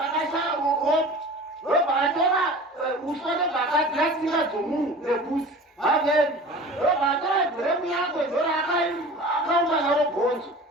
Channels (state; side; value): normal; both; correlation 0.39